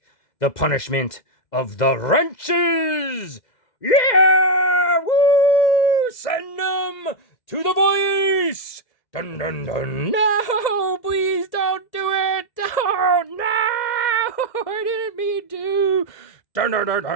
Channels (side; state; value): right; late; 2.0 ms